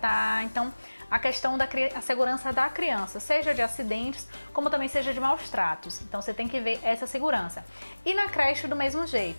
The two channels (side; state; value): both; inverted; correlation -1.00